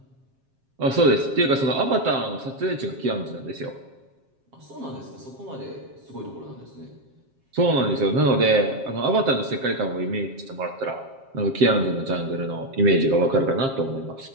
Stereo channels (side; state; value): left; late; 7.4 ms